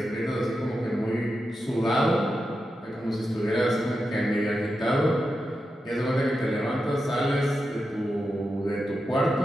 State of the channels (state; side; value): normal; both; correlation 0.89